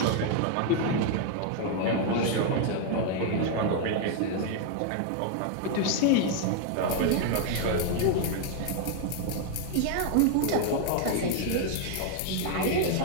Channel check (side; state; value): both; different; correlation 0.00